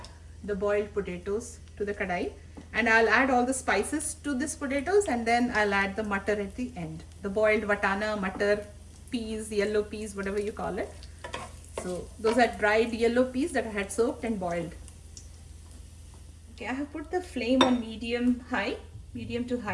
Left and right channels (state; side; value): identical; both; correlation 1.00